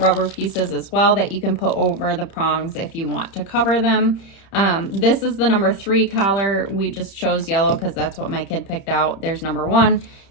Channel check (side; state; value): right; late; 30 ms